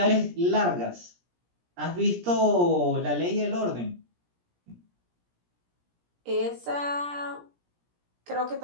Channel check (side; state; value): left; late; 17 ms